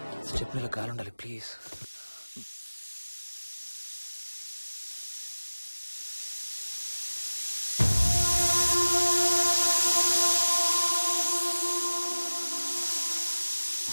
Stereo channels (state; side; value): inverted; both; correlation -1.00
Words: స్టెప్నీలో కాలుండాలి please.